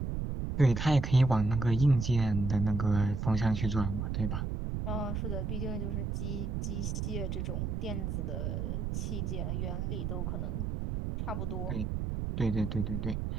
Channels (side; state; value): right; noise; rumble, 2 dB below the sound